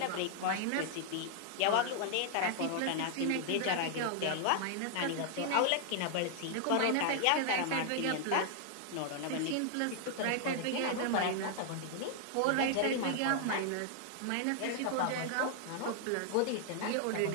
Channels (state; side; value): different; both; correlation 0.00